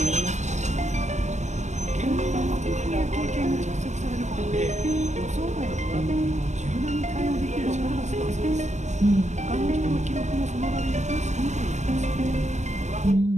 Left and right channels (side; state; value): left; late; 0.34 ms